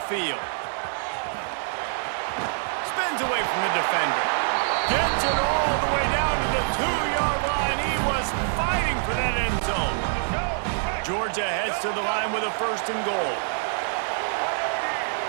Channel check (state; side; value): silent; left; digital silence